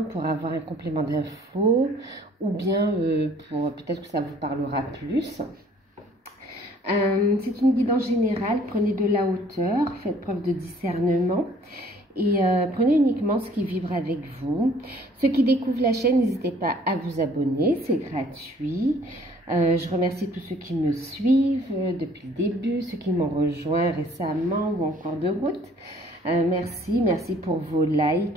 pour avoir un complément d'infos ou bien pour peut-être que ça vous parlera plus. C'est une guidance générale, prenez de la hauteur, faites preuve de discernement et prenez uniquement ce qui vibre avec vous. Ceux qui découvrent la chaîne, n'hésitez pas à vous abonner, c'est gratuit. Je remercie tous ceux qui me suivent depuis le début, ceux qui m'ont rejoint récemment ou en cours de route. Merci pour vos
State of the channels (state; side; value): normal; both; correlation 0.57